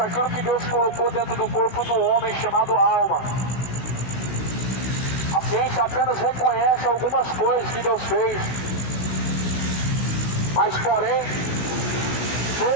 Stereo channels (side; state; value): right; late; 16 ms